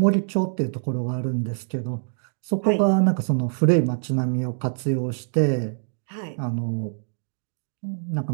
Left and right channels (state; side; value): silent; left; digital silence